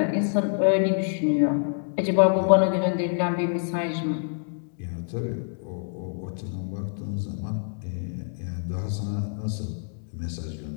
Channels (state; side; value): silent; right; digital silence